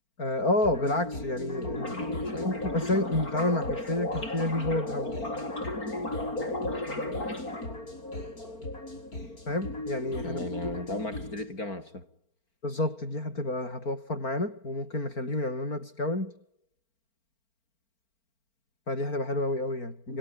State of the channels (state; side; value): late; right; 4.4 ms